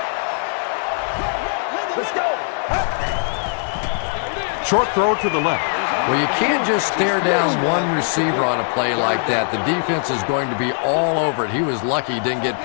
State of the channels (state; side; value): silent; right; 65 dB below the other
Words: Short throw to the left. Well, you can't just stare down one receiver on a play like that. The defense is going to be all over it. He was lucky he didn't get